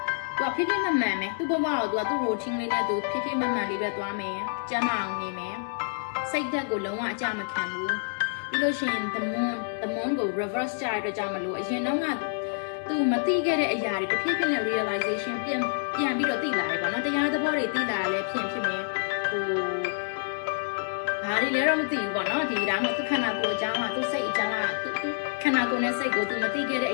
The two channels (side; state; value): right; silent; 60 dB below the other